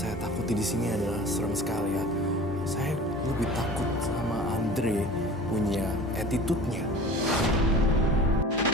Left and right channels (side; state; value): both; normal; correlation 0.40